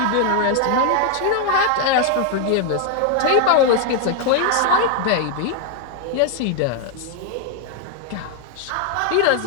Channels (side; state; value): both; different; correlation 0.00